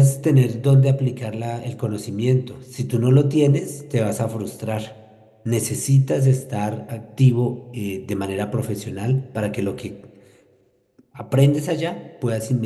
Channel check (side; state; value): both; identical; correlation 1.00